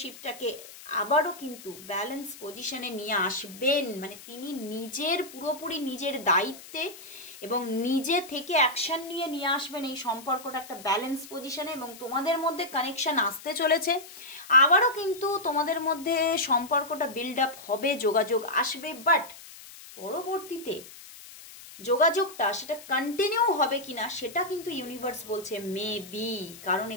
আবারও কিন্তু ব্যালেন্স পজিশনে নিয়ে আসবেন। মানে তিনি পুরোপুরি নিজের দায়িত্বে এবং নিজে থেকে অ্যাকশন নিয়ে আসবেন এই সম্পর্কটা একটা ব্যালেন্স পজিশনে, এবং তোমাদের মধ্যে কানেকশন আসতে চলেছে। আবারও কিন্তু তোমাদের মধ্যে সম্পর্কটা বিল্ড আপ হবে, যোগাযোগ আসবে, বাট পরবর্তীতে যোগাযোগটা সেটা কন্টিনিউ হবে কিনা সেটা কিন্তু ইউনিভার্স বলছে মেবি। কারণ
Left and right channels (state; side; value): noise; left; hiss, 17 dB below the sound